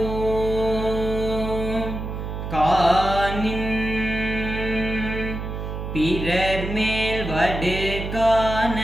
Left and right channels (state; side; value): noise; right; hum, 6 dB below the sound